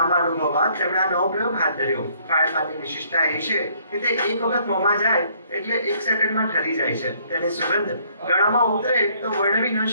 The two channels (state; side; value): inverted; both; correlation -0.64